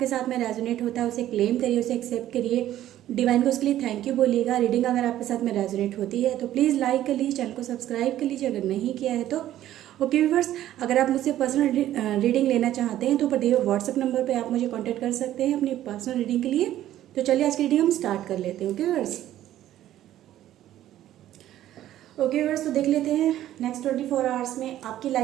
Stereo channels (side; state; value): left; quieter; 12.9 dB